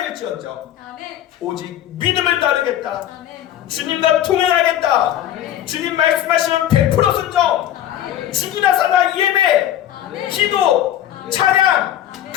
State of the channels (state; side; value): quieter; right; 11.7 dB